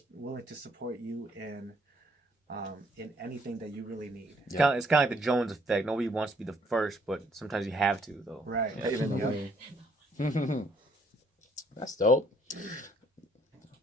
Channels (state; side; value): normal; both; correlation 0.66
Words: willing to support you in anything that you really need. It's kind of like the Jones effect. Nobody wants to be the first, but sometimes you have to, though. Right. Yeah. Even though Yeah. That's dope.